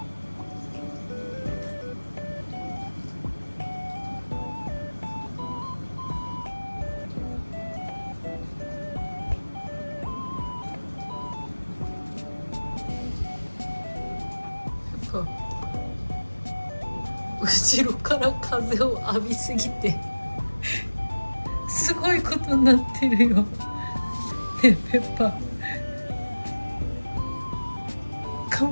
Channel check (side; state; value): both; inverted; correlation -1.00